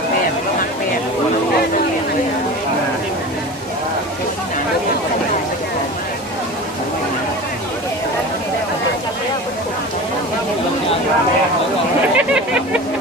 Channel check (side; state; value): both; normal; correlation 0.33